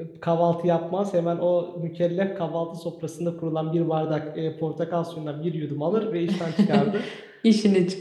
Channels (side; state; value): both; identical; correlation 1.00